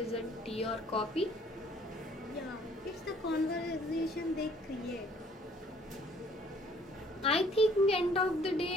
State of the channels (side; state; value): both; normal; correlation 0.59